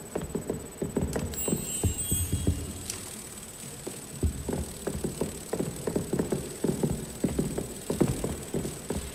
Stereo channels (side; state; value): both; identical; correlation 1.00